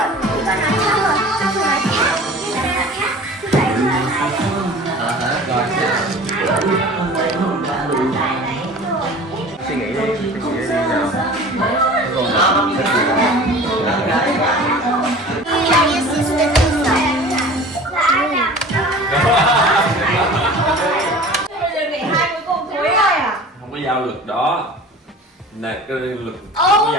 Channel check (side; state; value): both; normal; correlation 0.41